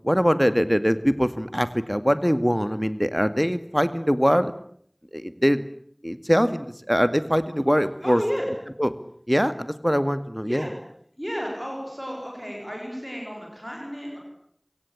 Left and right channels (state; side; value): identical; both; correlation 1.00